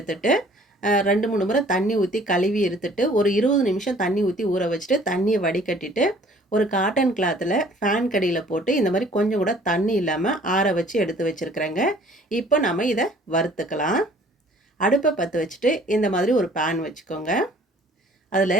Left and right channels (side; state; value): both; normal; correlation 0.55